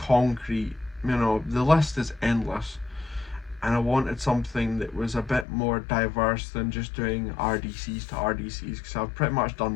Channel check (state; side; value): drops out; right; at 5.5 s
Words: you know, the list is endless. And I wanted something that was a bit more diverse than just doing RDCs to RDCs, because I've pretty much done